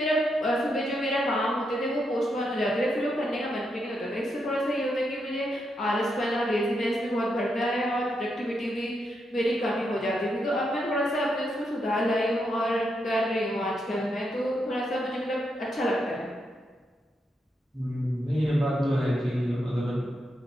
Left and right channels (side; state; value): both; normal; correlation 0.82